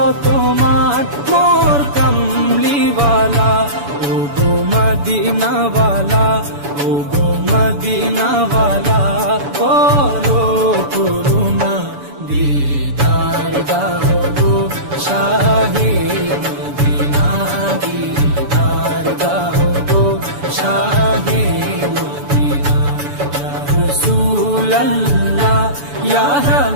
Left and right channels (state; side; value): late; left; 7.0 ms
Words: মান মোর কামলিওয়ালা। ও গো মদিনাওয়ালা, ও গো মদিনাওয়ালা, করো করুণা দিদার দাও গো শাহে মদিনা, দিদার দাও গো শাহে মদিনা। ইয়া রাসূলাল্লাহ ইয়া